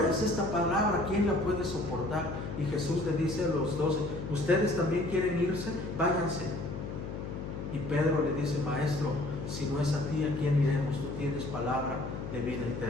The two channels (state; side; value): noise; left; hum, 7 dB below the sound